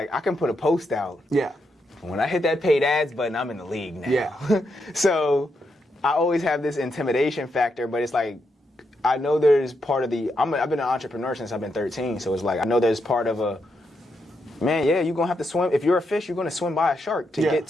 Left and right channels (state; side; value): normal; both; correlation 0.82